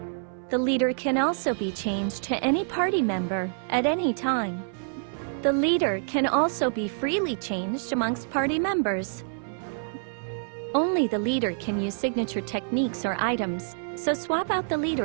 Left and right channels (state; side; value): silent; left; 60 dB below the other